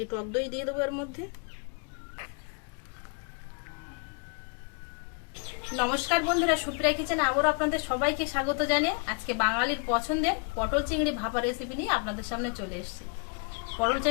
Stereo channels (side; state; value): right; quieter; 36.7 dB